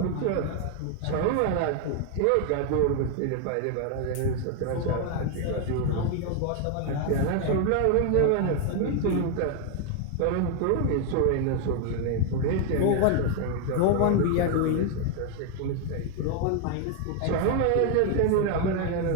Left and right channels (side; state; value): both; different; correlation 0.01